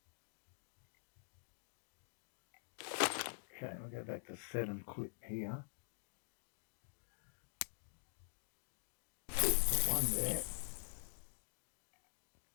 Okay, we'll go back to 7 clip here. Put one there.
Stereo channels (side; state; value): right; silent; digital silence